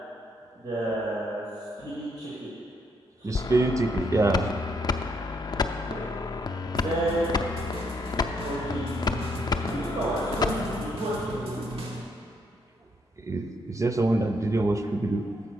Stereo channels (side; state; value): both; normal; correlation 0.73